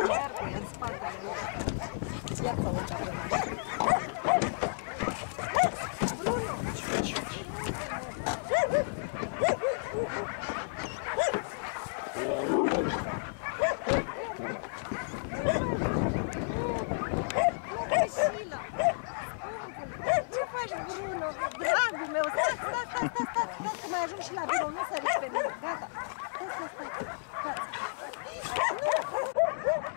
în spatele lui. Ia să urca pe mașină. Bruno! Ce faci, Bruno? Dragul meu, stai, că mai ajung și la birou, nu săriți pe mine, gata.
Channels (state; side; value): silent; right; digital silence